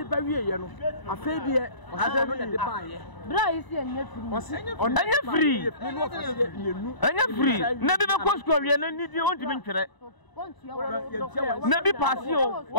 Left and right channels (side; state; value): right; late; 1.0 ms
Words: ba wie ye no afa bi e asa no de ba ye bra isi enye free enye free na bi be ko school wie na nidi on ti bi ntwere na bi pasio